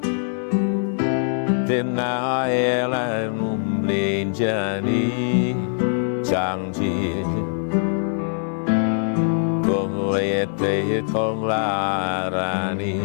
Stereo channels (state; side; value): silent; right; 62 dB below the other